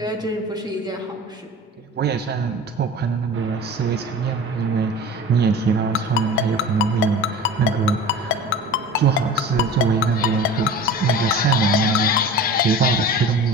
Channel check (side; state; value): both; normal; correlation 0.37